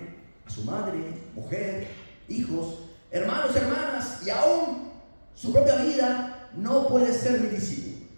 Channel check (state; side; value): inverted; both; correlation -1.00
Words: a su madre, mujer, hijos, hermanos, hermanas y aún su propia vida, no puede ser mi discípulo.